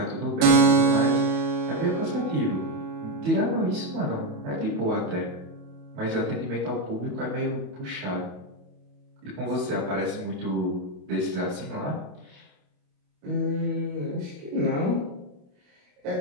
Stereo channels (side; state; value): left; late; 28 ms